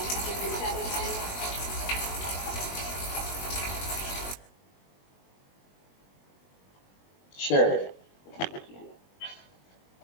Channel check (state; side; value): late; right; 21 ms